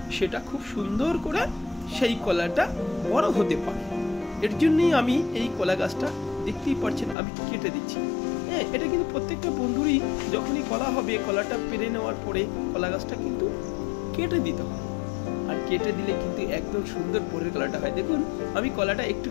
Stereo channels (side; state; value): right; drops out; at 7.2 s